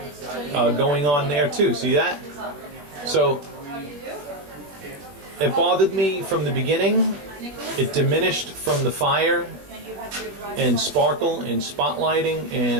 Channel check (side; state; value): left; late; 21 ms